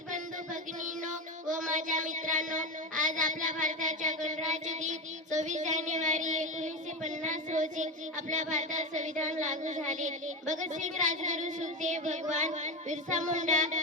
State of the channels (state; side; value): normal; both; correlation 0.17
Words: बंधू भगिनींनो व माझ्या मित्रांनो, आज आपल्या भारताच्या गणराज्य दिन 26 जानेवारी 1950 रोजी आपल्या भारतात संविधान लागू झाले. भगतसिंग, राजगुरू, सुखदेव, भगवान बिरसा मुंडा